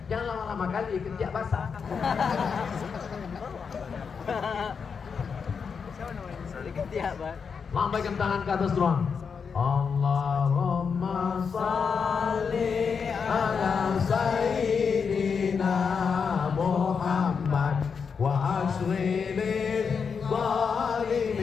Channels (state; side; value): quieter; right; 6.0 dB